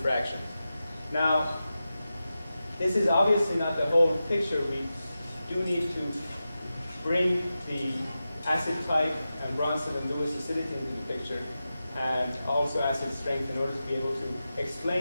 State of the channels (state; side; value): inverted; both; correlation -0.92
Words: fractions. Now, this is obviously not the whole picture. We do need to bring the acid type and Bronson and Lewis acidity into the picture, and also acid strength, in order to be able to